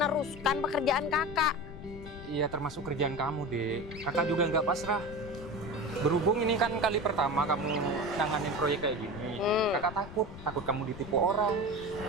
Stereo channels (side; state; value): left; noise; rumble, 14 dB below the sound